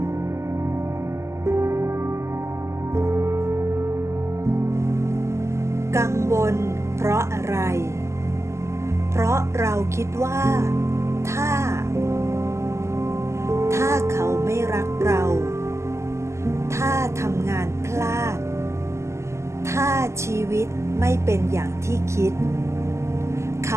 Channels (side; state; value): left; late; 0.13 ms